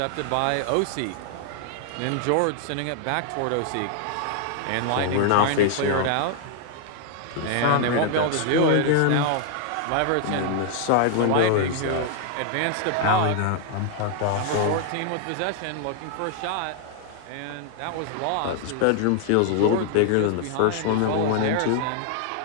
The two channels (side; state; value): both; different; correlation 0.00